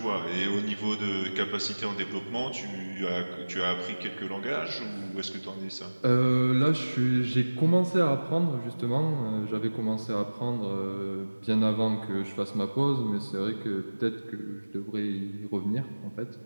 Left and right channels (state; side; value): inverted; both; correlation -1.00